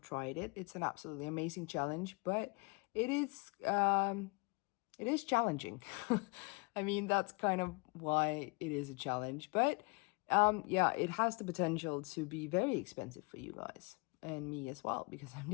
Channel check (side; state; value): right; quieter; 30.9 dB